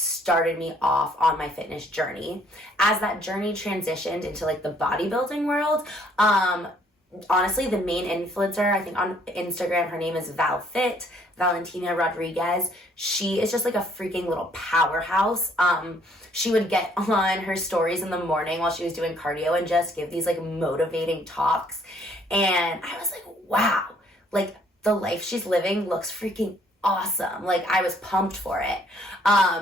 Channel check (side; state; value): both; normal; correlation 0.64